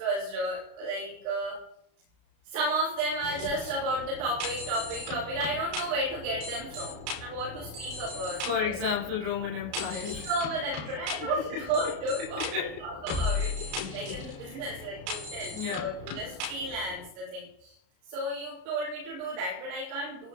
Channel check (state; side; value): late; left; 33 ms